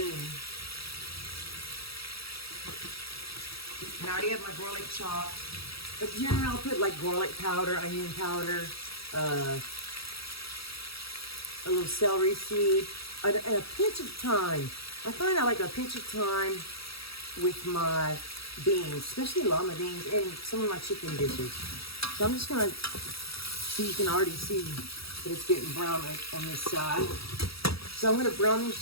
And I already have my garlic chopped. But generally I'll put like garlic powder, onion powder, a little celery seed, and a pinch of thyme. I find I like a pinch of thyme with my beans, especially lima beans, and some of my chicken dishes. So I'm just gonna, so you can already see that it's getting brown on this side. So I'm gonna brown this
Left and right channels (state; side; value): late; right; 0.76 ms